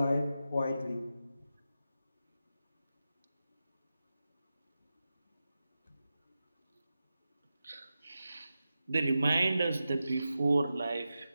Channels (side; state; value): both; inverted; correlation -0.92